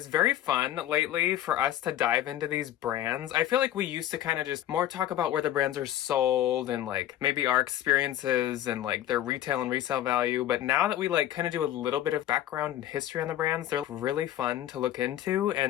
very fun lately for us to dive into these brands. I feel like we used to kind of just more talk about where the brands are sold and maybe our experiences and their retail and resale value, but now that we kind of do a little bit of background and history on the brands, they're really fun to look into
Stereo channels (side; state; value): right; quieter; 12.4 dB